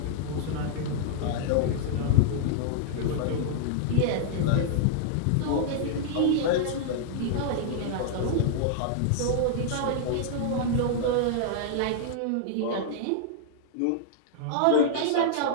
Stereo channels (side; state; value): both; different; correlation -0.01